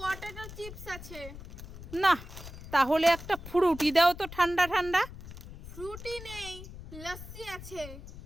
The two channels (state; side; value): noise; left; rumble, 13 dB below the sound